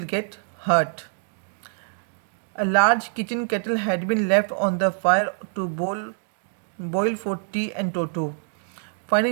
get hurt. A large kitchen kettle had been left on the fire to boil for tea, and Toto,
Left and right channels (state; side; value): silent; left; digital silence